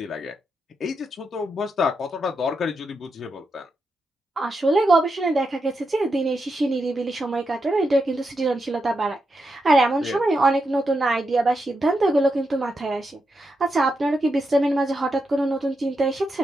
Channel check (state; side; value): normal; both; correlation 0.85